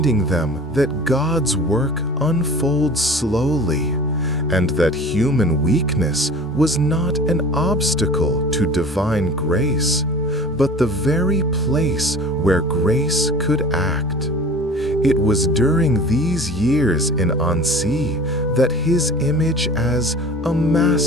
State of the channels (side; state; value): both; normal; correlation 0.41